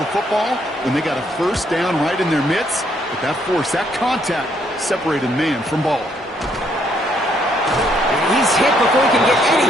football when they got a first down right in their midst. But that force, that contact, separated man from ball. And he's hit before he can get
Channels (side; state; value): both; normal; correlation 0.70